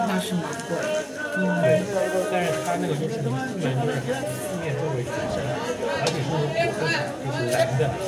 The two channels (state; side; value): identical; both; correlation 1.00